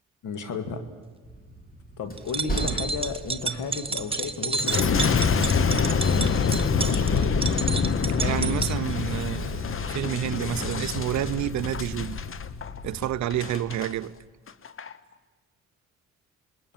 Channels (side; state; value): both; normal; correlation 0.35